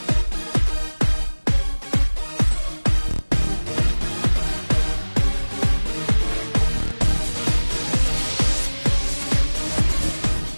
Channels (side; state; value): both; inverted; correlation -1.00